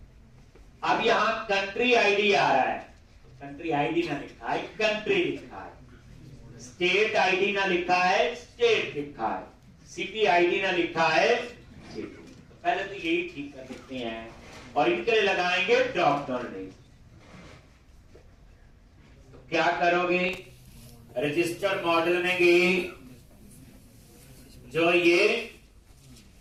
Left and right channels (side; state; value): both; identical; correlation 1.00